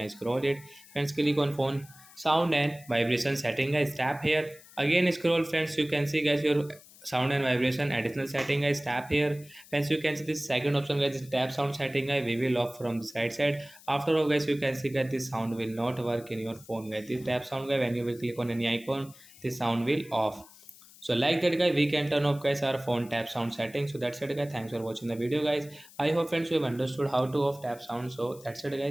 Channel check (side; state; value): left; noise; hiss, 22 dB below the sound